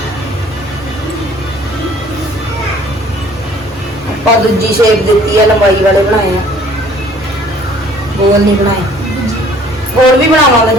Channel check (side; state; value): both; normal; correlation 0.55